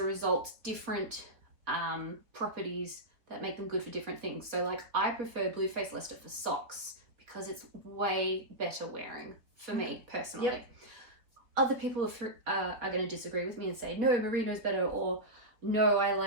result, different properties that make them good for different things. So like I prefer Blueface Leicester for socks because it's way better wearing for me personally. Other people are going to disagree with me and say, no, merino's better, or no, I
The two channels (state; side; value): late; left; 4.0 ms